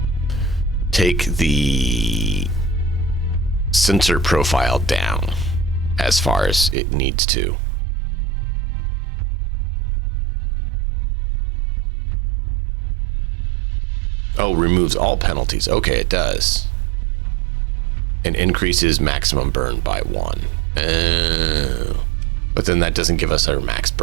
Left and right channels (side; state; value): left; drops out; at 6.8 s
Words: take the sensor profile down as far as it needs to. Oh, removes all penalties. Okay, it does. And increases maximum burn by 1. Oh. But then that doesn't give us our max